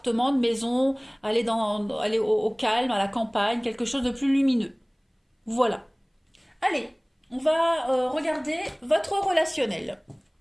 de maison, aller au calme, à la campagne, quelque chose de plus lumineux. Voilà. Allez, on va regarder votre relationnel.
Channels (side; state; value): both; identical; correlation 1.00